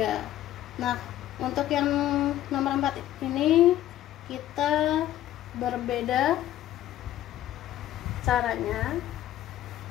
Nah, untuk yang nomor 4 ini kita berbeda caranya.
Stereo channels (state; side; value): quieter; right; 13.1 dB